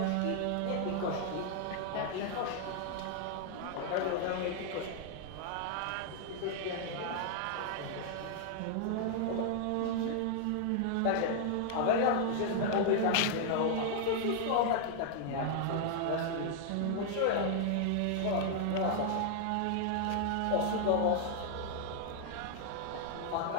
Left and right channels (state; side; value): different; both; correlation 0.00